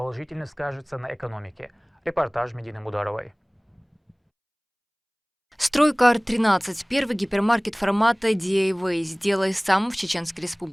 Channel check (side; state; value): both; identical; correlation 1.00